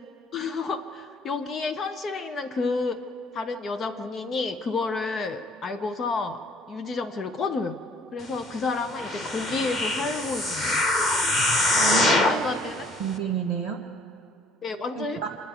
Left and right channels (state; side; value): normal; both; correlation 0.59